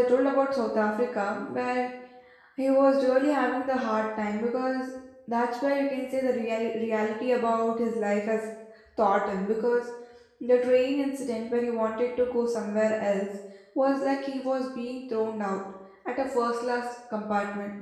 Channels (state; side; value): identical; both; correlation 1.00